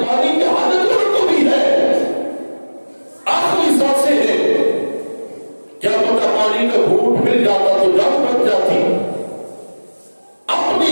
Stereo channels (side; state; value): both; inverted; correlation -1.00